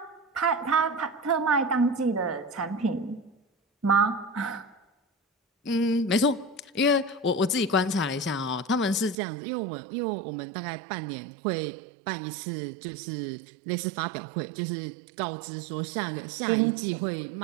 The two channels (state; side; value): drops out; left; at 9.2 s